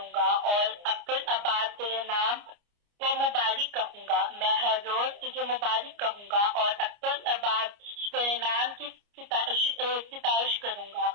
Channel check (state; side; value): late; left; 29 ms